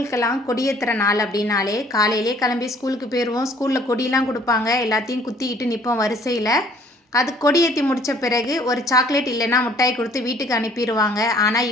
கொடியேத்துற நாள் அப்படின்னாலே காலையிலே கிளம்பி ஸ்கூலுக்கு போயிடுவோம். ஸ்கூலில் கொடியெலாம் கொடுப்பாங்க. எல்லாத்தையும் குத்திக்கிட்டு நிற்போம் வரிசையில். அது கொடியேற்றி முடித்த பிறகு ஒரு சாக்லேட் இல்லைன்னா மிட்டாய் கொடுத்து வீட்டுக்கு அனுப்பிடுவாங்க. ஆனால்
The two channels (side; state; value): both; normal; correlation 0.58